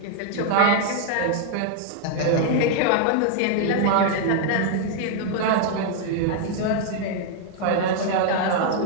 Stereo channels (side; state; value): both; different; correlation 0.00